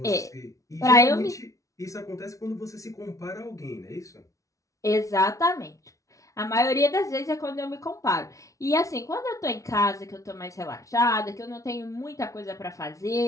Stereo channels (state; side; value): late; right; 0.16 ms